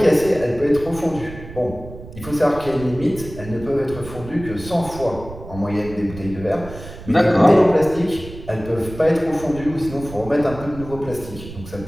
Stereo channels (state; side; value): noise; right; rumble, 14 dB below the sound